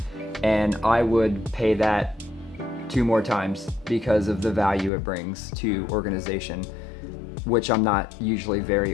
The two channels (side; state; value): right; drops out; at 4.9 s